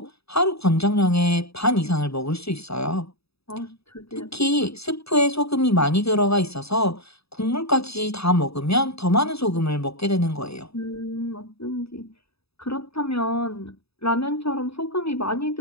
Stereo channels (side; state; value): right; late; 0.78 ms